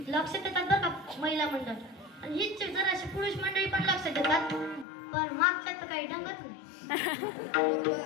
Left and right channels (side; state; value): right; drops out; at 4.9 s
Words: लक्ष देतात बरं का महिला मंडळ. आणि हीच जराशी पुरुष मंडळी पण लक्ष देतात, पण मागच्या तर काही ढंगच नाही.